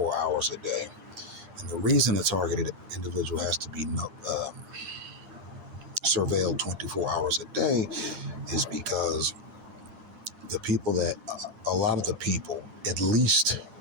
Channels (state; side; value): late; left; 8.8 ms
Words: hours a day. And the reason a targeted individual has to be surveilled 24 hours a day is because a lot of the people, at least